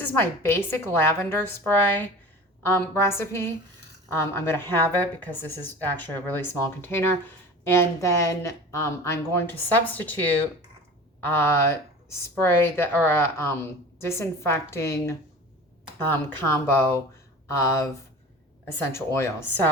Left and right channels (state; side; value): normal; both; correlation 0.37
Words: is my basic lavender spray recipe. I'm going to have it because this is actually a really small container. And then I'm going to substitute spray that, or a disinfecting combo of essential oils.